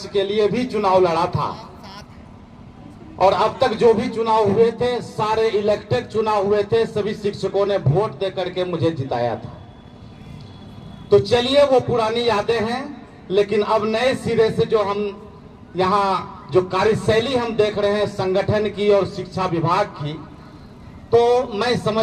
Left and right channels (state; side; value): identical; both; correlation 1.00